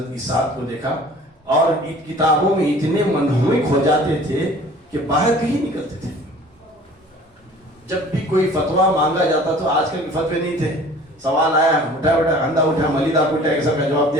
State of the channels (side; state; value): both; normal; correlation 0.48